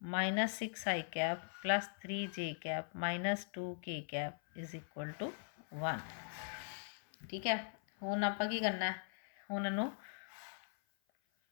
minus 6 i cap plus 3 j cap minus 2 k cap is equal to 1, ठीक है। हुण आपां की करना है, हुण इनू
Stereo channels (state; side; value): silent; right; 51 dB below the other